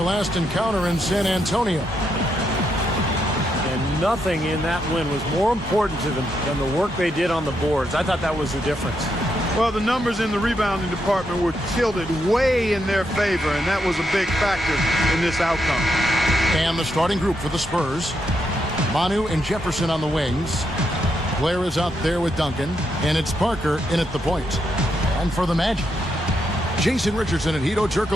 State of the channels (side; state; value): both; normal; correlation 0.80